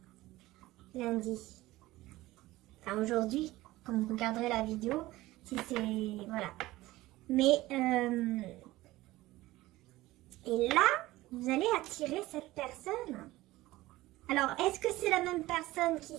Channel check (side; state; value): left; quieter; 17.9 dB